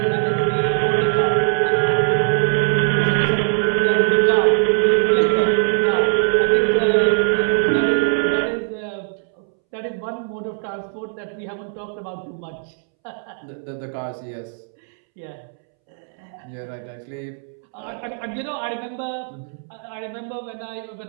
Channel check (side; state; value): left; silent; 65 dB below the other